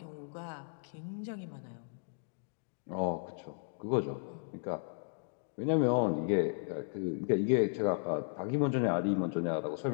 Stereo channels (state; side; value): silent; right; digital silence